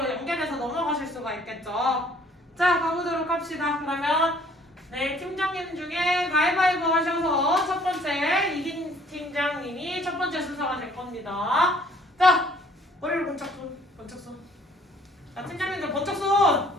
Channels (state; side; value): normal; both; correlation 0.59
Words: 연결해서 넘어가실 수가 있겠죠. 자, 가보도록 합시다. 그러면 네, 팀장님 중에 가위바위보 하셔서 첫 번째 이긴 팀장님이 첫 번째 순서가 될 겁니다. 자, 머리를 번쩍 손, 번쩍 손. 자, 팀장님들 번쩍 손.